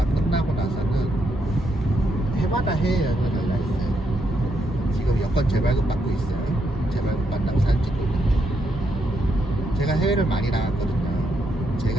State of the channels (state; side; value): normal; both; correlation 0.79